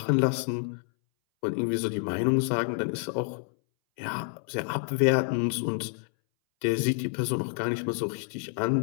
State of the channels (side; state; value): right; silent; 59 dB below the other